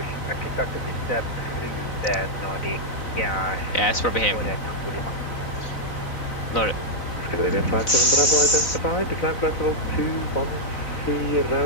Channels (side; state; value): right; late; 4.0 ms